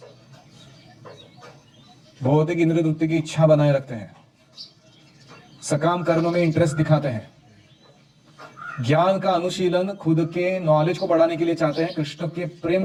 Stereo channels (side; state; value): both; identical; correlation 1.00